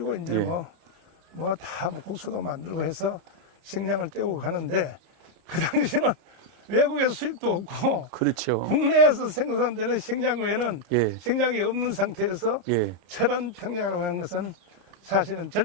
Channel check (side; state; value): left; late; 30 ms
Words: 이제 예. 뭐 다 국수도 만들고 해서 식량을 떼고 가는데 그 당시는 외국에서 수입도 없고 그렇죠. 국내에서 생산되는 식량 외에는 예. 식량이 없는 상태에서 예. 철원 평야라고 하는 것은 사실은